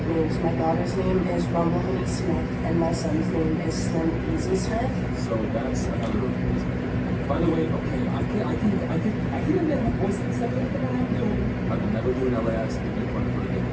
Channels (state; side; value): identical; both; correlation 1.00